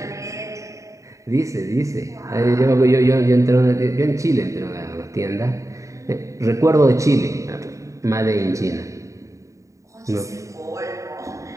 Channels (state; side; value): late; left; 0.15 ms